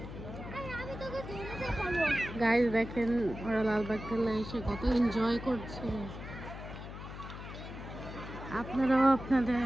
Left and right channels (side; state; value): left; noise; hum, 10 dB below the sound